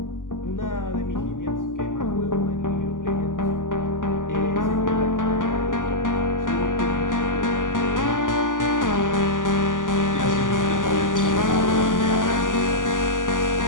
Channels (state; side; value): late; right; 0.88 ms